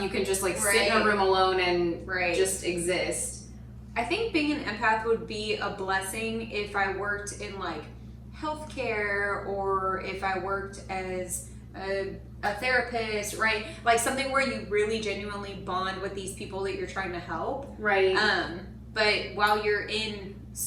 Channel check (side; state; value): both; identical; correlation 1.00